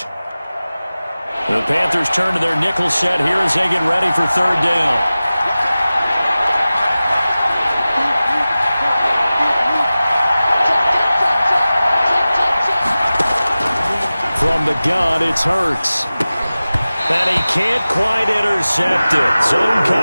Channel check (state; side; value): inverted; both; correlation -0.96